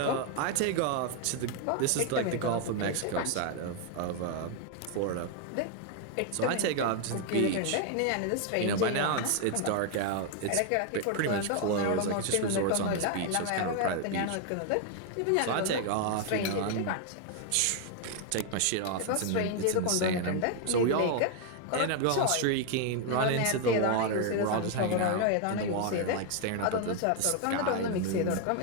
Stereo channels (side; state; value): both; different; correlation 0.01